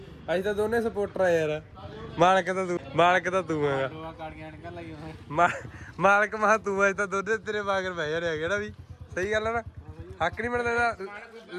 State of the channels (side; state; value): both; identical; correlation 1.00